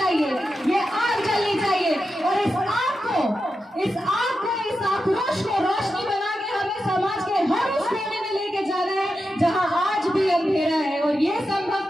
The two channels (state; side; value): normal; both; correlation 0.89